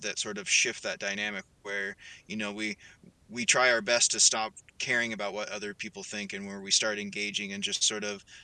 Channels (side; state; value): both; identical; correlation 1.00